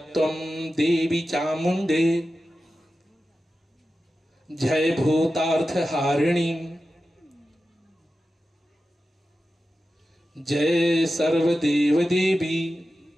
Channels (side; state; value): both; normal; correlation 0.93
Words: देवी चामुंडे जय भूतार्थ हारिणी जय सर्वदेव देवी